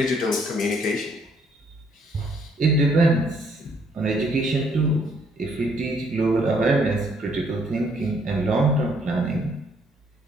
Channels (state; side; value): normal; both; correlation 0.67